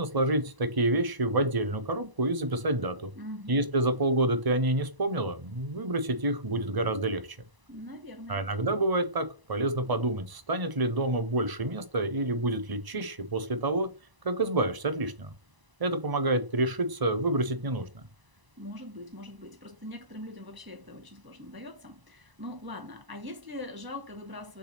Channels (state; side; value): late; left; 1.0 ms